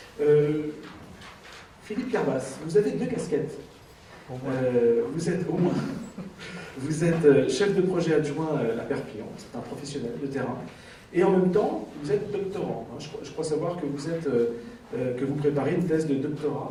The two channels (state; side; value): identical; both; correlation 1.00